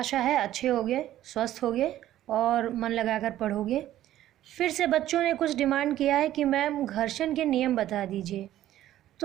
है अच्छे होगे, स्वस्थ होगे और मन लगाकर पढ़ोगे। फिर से बच्चों ने कुछ डिमांड किया है कि मैम घर्षण के नियम बता दीजिए।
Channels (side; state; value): left; quieter; 13.2 dB